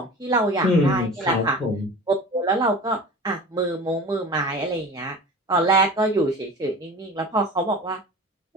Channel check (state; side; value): normal; both; correlation 0.37